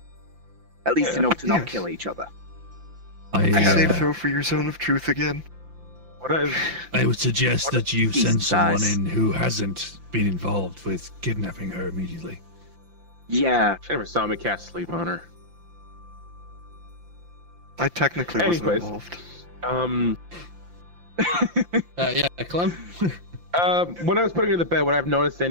At least Yeah. enough to not Yes. kill each other. Save throw for your zone of truth again. What is? I would suggest that you decent send someone size. in who hasn't been involved with kidnapping her immediately. Yeah. She never saw me cast sleep on her. I technically wasn't Anyways. involved. Yeah, Clem. When I was putting her to bed, would I have noticed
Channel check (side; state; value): left; late; 5.8 ms